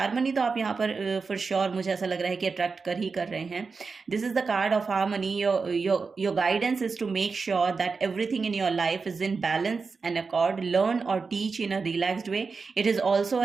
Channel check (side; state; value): left; quieter; 4.7 dB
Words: तो आप यहाँ पर फॉर श्योर मुझे ऐसा लग रहा है कि अट्रैक्ट कर रहे हैं। This is the card of harmony. Your guidance is to make sure that everything in your life is in balance and accord. Learn और teach in a relaxed way. It is also